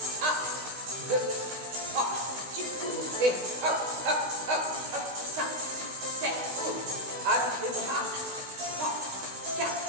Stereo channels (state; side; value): late; left; 16 ms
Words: 1, 2, 3, tu cours et hop, hop, hop, hop, 5, 7, cours. Avec les bras, 3, 4,